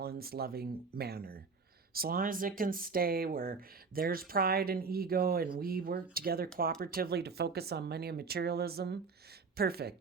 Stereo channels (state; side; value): quieter; left; 4.8 dB